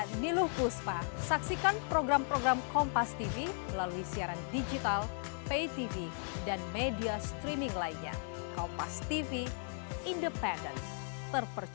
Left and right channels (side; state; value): right; silent; 54 dB below the other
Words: Niluh Puspa. Saksikan program-program Kompas TV melalui siaran digital, pay TV, dan media streaming lainnya. Kompas TV, independen,